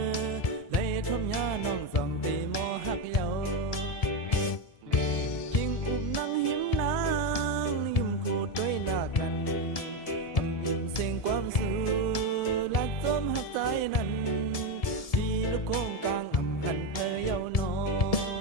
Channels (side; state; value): right; late; 1.7 ms